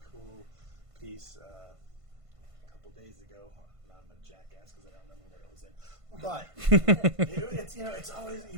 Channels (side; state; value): left; late; 1.5 ms